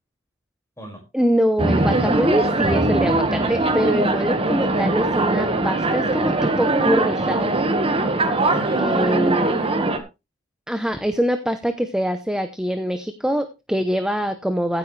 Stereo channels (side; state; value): both; normal; correlation 0.58